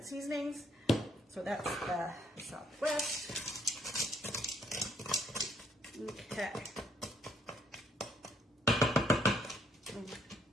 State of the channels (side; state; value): both; normal; correlation 0.68